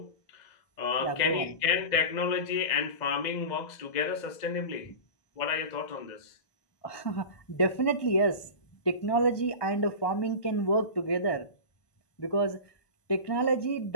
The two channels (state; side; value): late; right; 1.2 ms